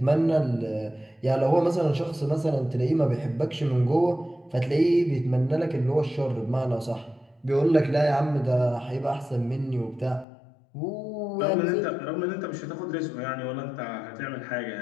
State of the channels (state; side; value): drops out; right; at 10.2 s